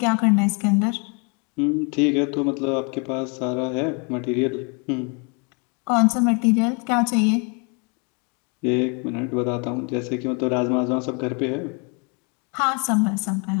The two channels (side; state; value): right; quieter; 34.5 dB